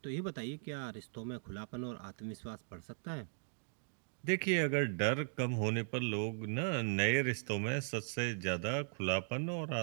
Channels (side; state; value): left; silent; digital silence